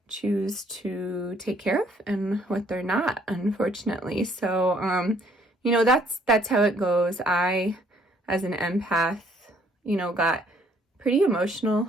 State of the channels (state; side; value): normal; both; correlation 0.63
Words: choose to take care of and what they're not, unfortunately. So you know, that's how it goes. I, as an empath, you know, got pretty emotional